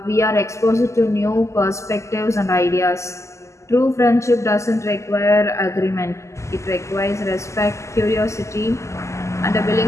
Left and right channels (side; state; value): right; late; 0.14 ms